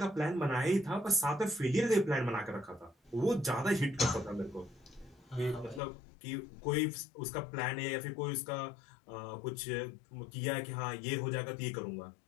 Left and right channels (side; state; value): right; drops out; at 5.8 s